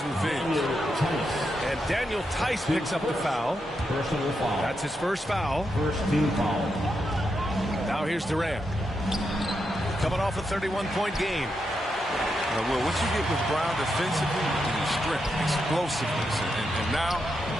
revenge. And Daniel Tice picks up the foul. Personal foul. That's his first foul. First team foul. Now here's Durant. Coming off a 31-point game. Well, what you get with Brown defensively is strength, explosiveness, and now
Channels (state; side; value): normal; both; correlation 0.84